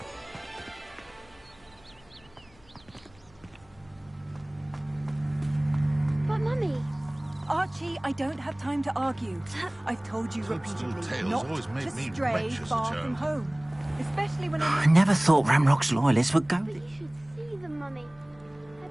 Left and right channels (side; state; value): left; noise; hum, 28 dB below the sound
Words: But Mummy... Archie, I don't have time to argue. I've told you repeatedly not to stray far from home. Especially when I never thought Ramrock's loyalists would go there. You should see them, Mummy. They're